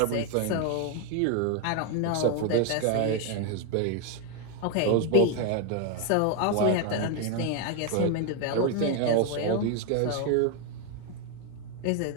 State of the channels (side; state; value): both; different; correlation 0.01